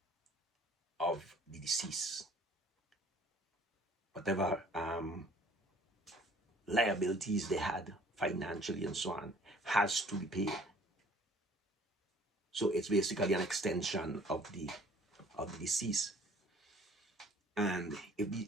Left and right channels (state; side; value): normal; both; correlation 0.53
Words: of the deceased, whatever liabilities they had financially and so on has to be paid. So it's basically an extension of the deceased. And if the